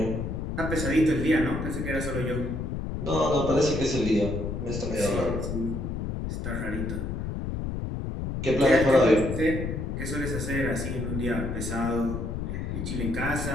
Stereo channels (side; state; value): left; noise; rumble, 3 dB below the sound